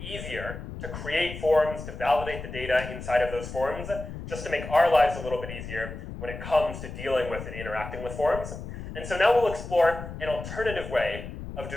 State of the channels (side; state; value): left; noise; rumble, 9 dB below the sound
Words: easier to create forms, to validate the data inside of those forms, just to make our lives a little bit easier when it comes to dealing with and interacting with forms. And so now we'll explore an alternative way of